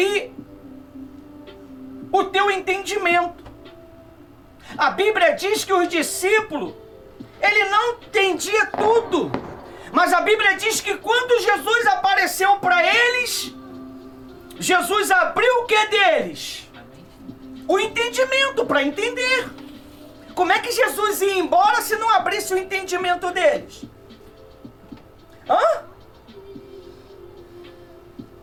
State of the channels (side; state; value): both; identical; correlation 1.00